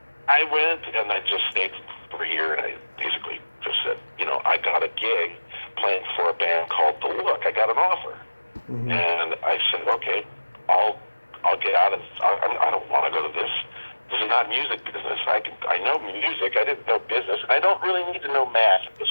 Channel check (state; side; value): inverted; both; correlation -1.00